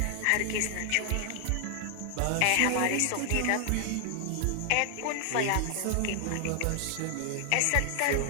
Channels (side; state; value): both; different; correlation 0.00